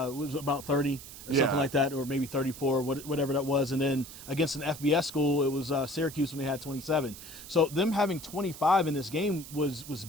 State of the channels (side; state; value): right; noise; hiss, 14 dB below the sound